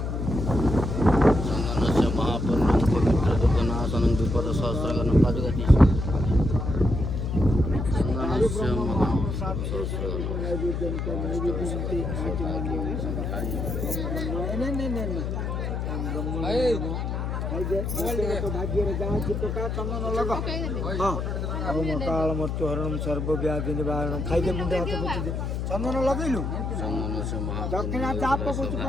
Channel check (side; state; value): left; noise; hum, 2 dB below the sound